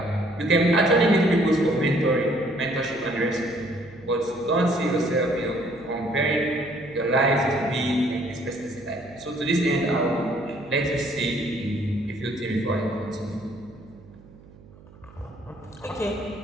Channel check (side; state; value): right; noise; hum, 23 dB below the sound